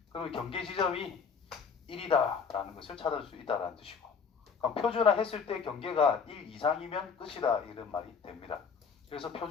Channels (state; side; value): quieter; right; 5.9 dB